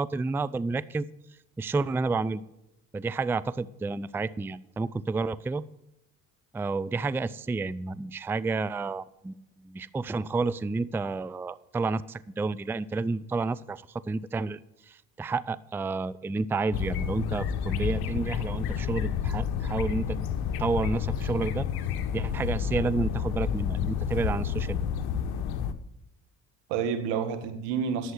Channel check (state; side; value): normal; both; correlation 0.62